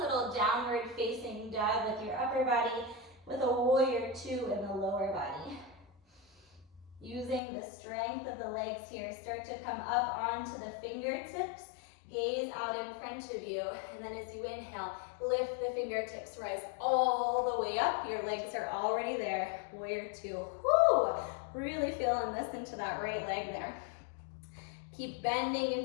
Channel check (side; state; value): right; drops out; at 7.4 s